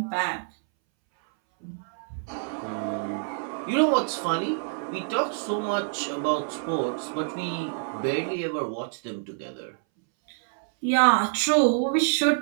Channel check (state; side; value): silent; left; 60 dB below the other